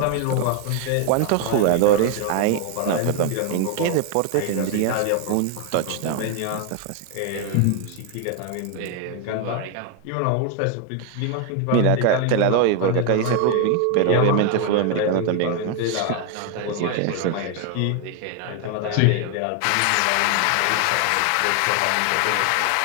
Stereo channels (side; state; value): both; different; correlation 0.01